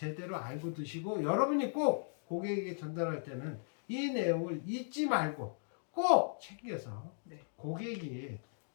알고 드시고 여러분이 꼭 고객에게 전달할 때는 이 내용을 잊지 말고 꼭 챙겨서 네. 고객이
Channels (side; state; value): right; silent; digital silence